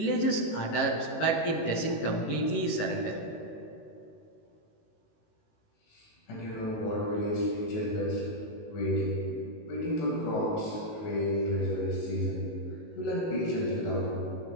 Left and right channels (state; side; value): late; right; 19 ms